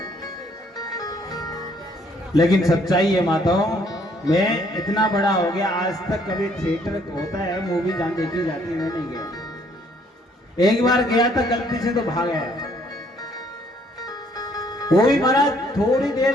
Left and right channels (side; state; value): both; normal; correlation 0.65